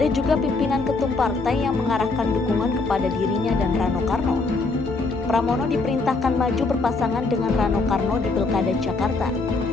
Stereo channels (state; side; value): quieter; right; 3.7 dB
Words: juga pimpinan ketum partai yang mengarahkan dukungan kepada dirinya dan Rano Karno. Pramono diperintahkan maju berpasangan dengan Rano Karno di Pilkada Jakarta.